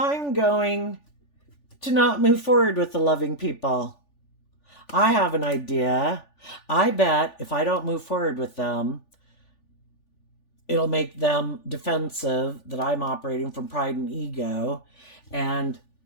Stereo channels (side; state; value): right; late; 3.4 ms